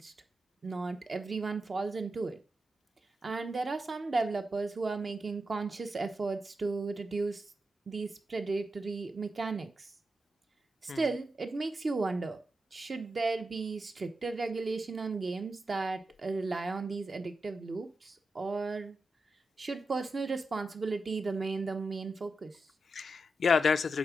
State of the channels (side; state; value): both; normal; correlation 0.88